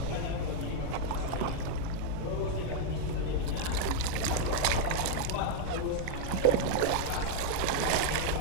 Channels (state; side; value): different; both; correlation 0.00